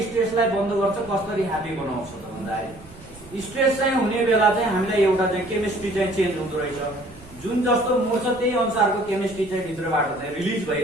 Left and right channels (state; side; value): noise; right; rumble, 21 dB below the sound